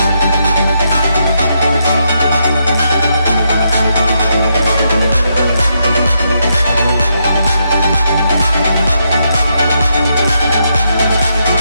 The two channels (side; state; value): both; inverted; correlation -0.79